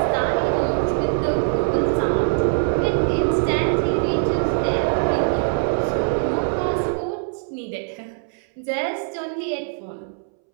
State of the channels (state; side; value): silent; left; 64 dB below the other